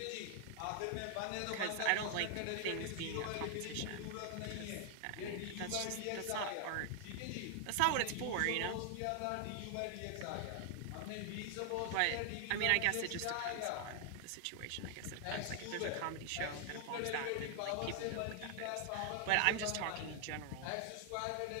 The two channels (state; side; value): different; both; correlation 0.00